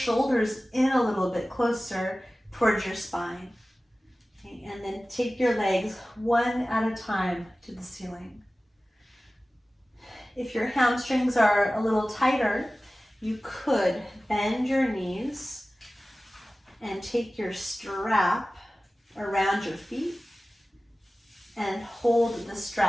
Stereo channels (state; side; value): normal; both; correlation 0.97